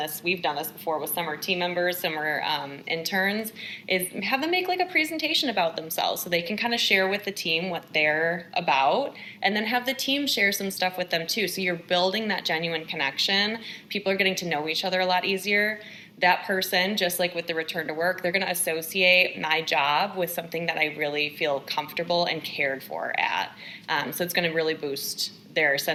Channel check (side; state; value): both; identical; correlation 1.00